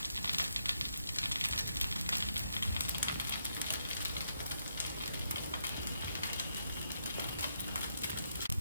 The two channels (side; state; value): both; inverted; correlation -0.78